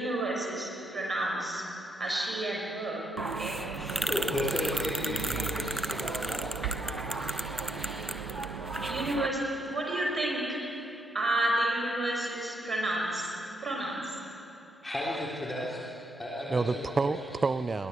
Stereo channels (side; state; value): both; normal; correlation 0.77